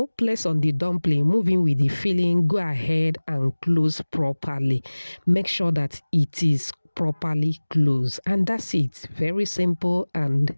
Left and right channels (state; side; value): inverted; both; correlation -1.00